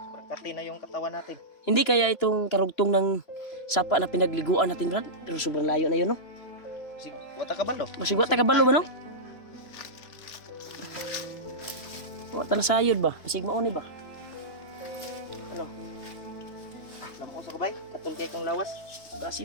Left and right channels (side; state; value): right; late; 2.9 ms